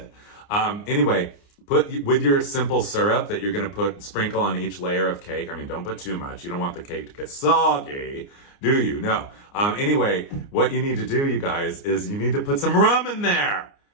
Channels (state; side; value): late; right; 29 ms